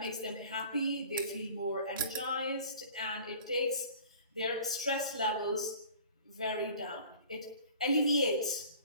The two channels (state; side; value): inverted; both; correlation -0.45